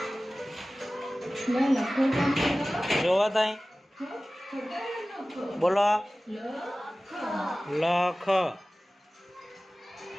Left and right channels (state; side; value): normal; both; correlation 0.97